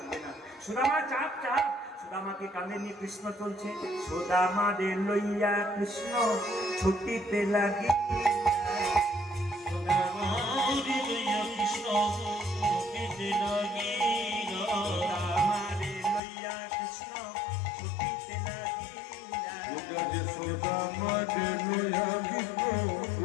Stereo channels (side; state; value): right; drops out; at 16.2 s